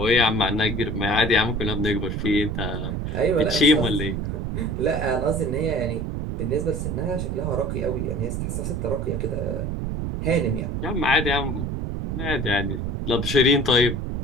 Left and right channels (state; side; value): noise; right; rumble, 2 dB below the sound